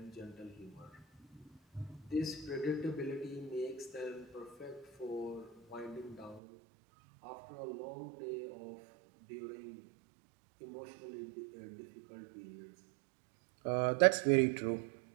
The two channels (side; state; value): left; drops out; at 6.4 s